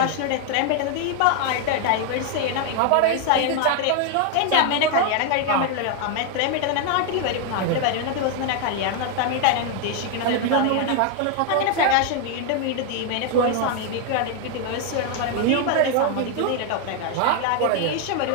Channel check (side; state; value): both; different; correlation 0.00